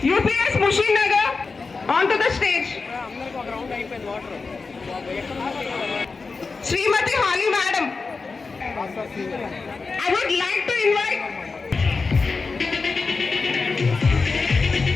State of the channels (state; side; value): quieter; right; 4.3 dB